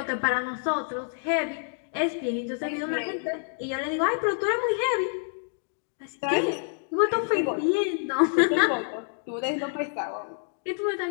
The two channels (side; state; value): right; silent; digital silence